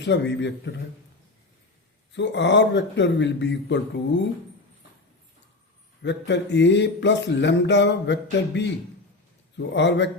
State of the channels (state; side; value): quieter; right; 3.1 dB